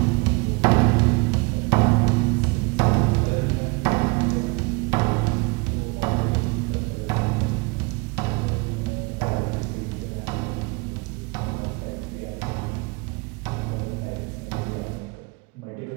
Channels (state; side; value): quieter; left; 27.9 dB